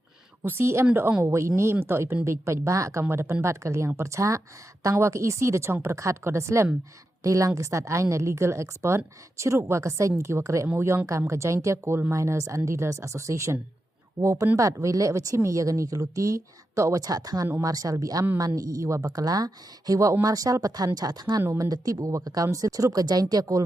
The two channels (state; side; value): normal; both; correlation 0.88